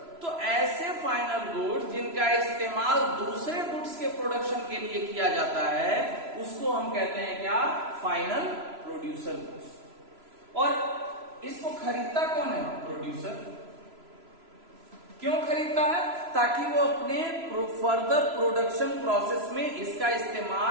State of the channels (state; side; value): late; left; 3.0 ms